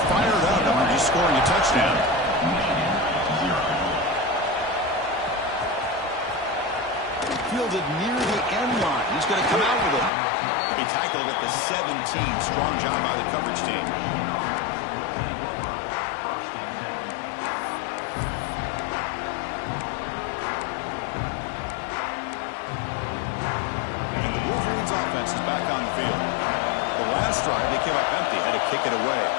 fired up after just scoring a touchdown. Fielded near the end line. He's going to come out with it. He tackled at the 17. Strong job by the coverage team. And the Wolverines offense is back on the field. The last drive, they came up empty, had to kick it away.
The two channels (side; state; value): right; drops out; at 10.1 s